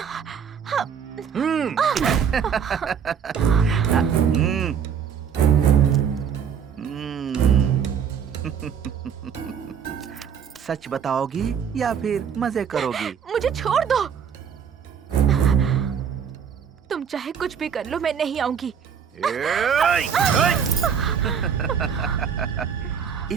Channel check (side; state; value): left; quieter; 7.5 dB